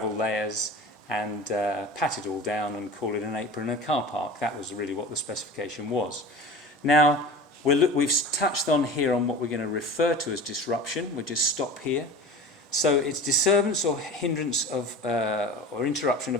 layers, and pat it all down and call it an apron and a car park. That was really what the specification was. Now, we've touched on here on what we're going to refer to as disruption. We'll just stop here. So it's disturbance or hindrance of or interruption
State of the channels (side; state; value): both; normal; correlation 0.35